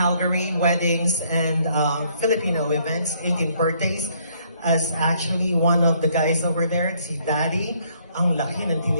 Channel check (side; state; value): both; inverted; correlation -0.67